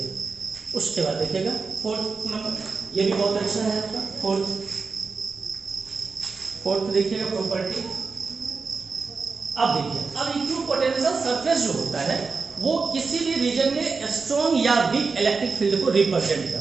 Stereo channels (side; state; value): left; quieter; 4.6 dB